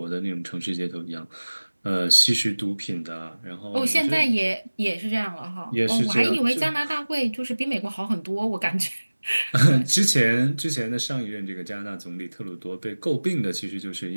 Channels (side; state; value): both; inverted; correlation -1.00